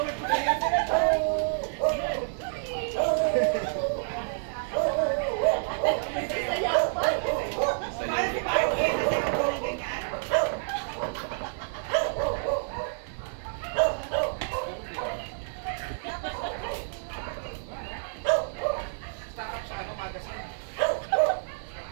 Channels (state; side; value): silent; left; digital silence